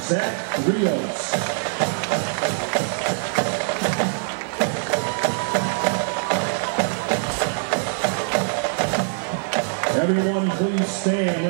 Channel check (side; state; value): left; silent; 63 dB below the other